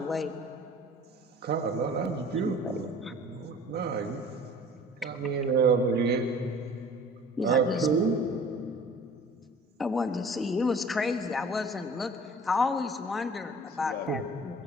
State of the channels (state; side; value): normal; both; correlation 0.47